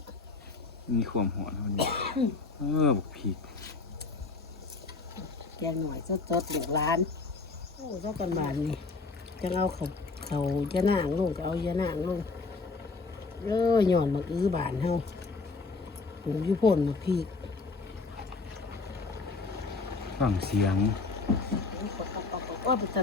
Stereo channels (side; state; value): right; quieter; 4.0 dB